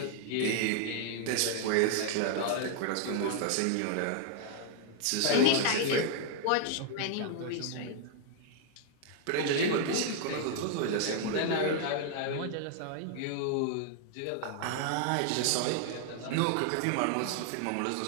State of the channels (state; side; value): different; both; correlation 0.00